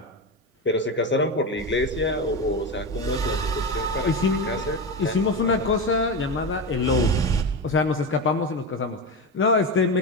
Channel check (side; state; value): both; normal; correlation 0.18